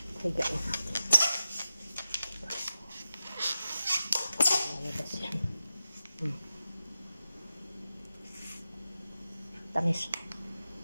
Higain natin. Lalabas yan. Tamis.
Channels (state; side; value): inverted; both; correlation -0.92